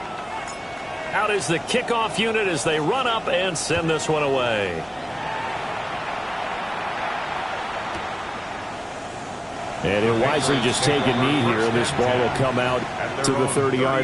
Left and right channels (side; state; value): both; identical; correlation 1.00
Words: Out is the kickoff unit as they run up and send this one away. And he'll wisely just take a knee here, and this ball will come out to the